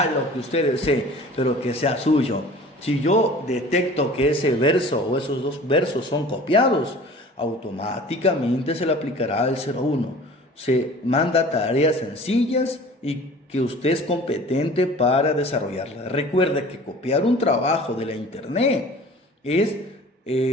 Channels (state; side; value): normal; both; correlation 0.44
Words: lo que usted desee, pero que sea suyo. Si yo detecto que ese verso o esos 2 versos son copiados, automáticamente se le aplicará el 01. Se manda tareas sencillas y que usted es competente para desarrollarlas. Recuerde que copiar un trabajo de la internet es